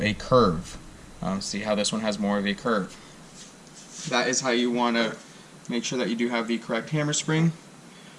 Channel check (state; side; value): identical; both; correlation 1.00